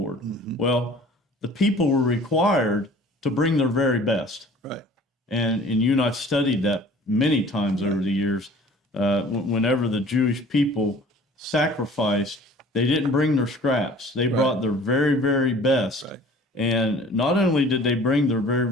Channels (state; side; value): normal; both; correlation 0.48